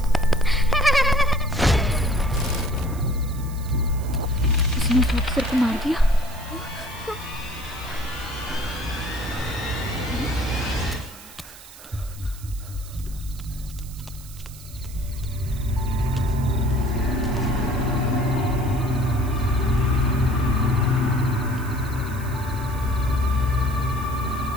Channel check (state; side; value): noise; right; hiss, 18 dB below the sound